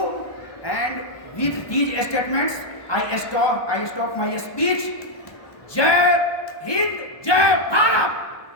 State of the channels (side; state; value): right; late; 1.2 ms